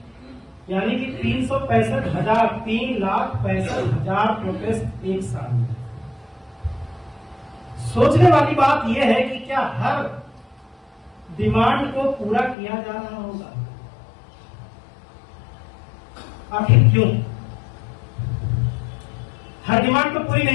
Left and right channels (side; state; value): right; drops out; at 12.6 s